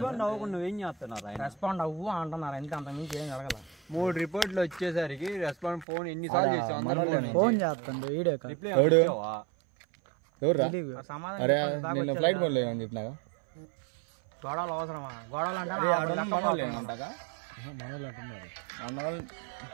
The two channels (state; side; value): drops out; left; at 5.9 s